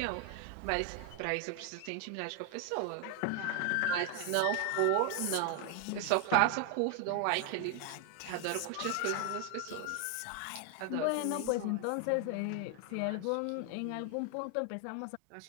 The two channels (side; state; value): both; different; correlation 0.01